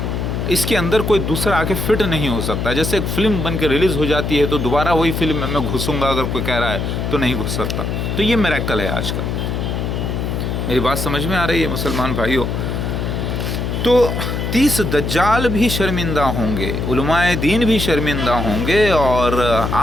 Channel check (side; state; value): left; noise; hum, 2 dB below the sound